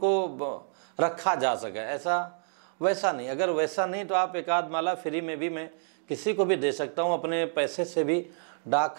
रखा जा सके, ऐसा वैसा नहीं। अगर वैसा नहीं तो आप एक आध माला फ्री में भी मैं किसी को भी दे सकता हूँ, अपने पैसे से भी डाक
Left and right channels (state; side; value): silent; left; digital silence